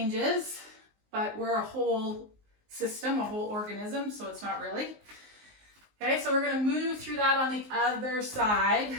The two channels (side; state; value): left; late; 19 ms